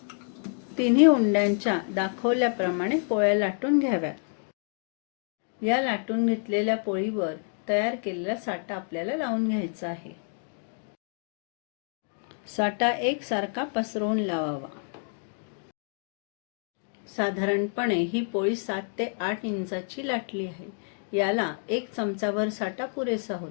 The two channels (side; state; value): right; silent; 55 dB below the other